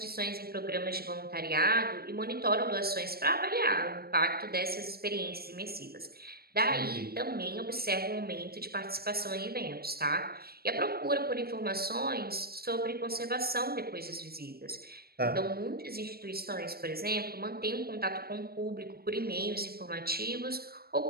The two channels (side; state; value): left; late; 0.45 ms